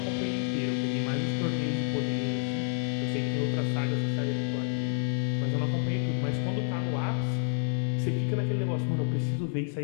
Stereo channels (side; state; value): right; silent; 57 dB below the other